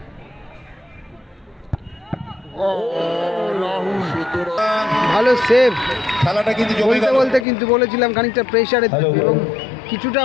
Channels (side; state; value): right; drops out; at 7.5 s